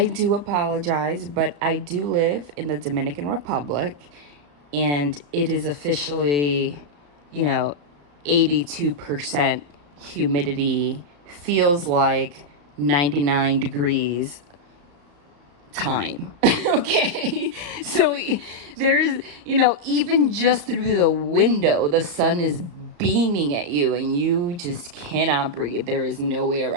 do apologize, but I do live in the Dominican Republic and it is officially, you know, 82% humidity, feels like 99 degrees time. Okay. So there's, even just through the window, the sun is beaming at you and you just cannot breathe. There is no way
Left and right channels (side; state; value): left; late; 34 ms